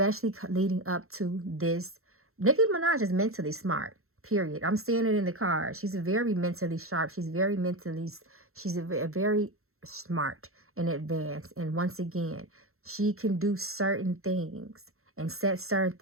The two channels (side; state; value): left; late; 0.62 ms